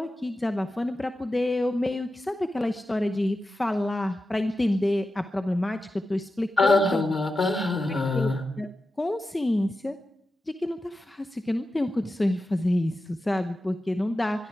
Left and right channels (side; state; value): both; normal; correlation 0.92